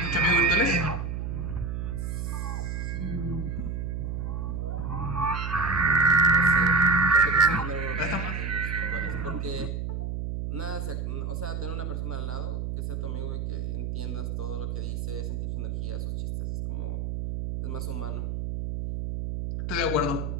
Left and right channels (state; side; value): noise; right; hum, 3 dB below the sound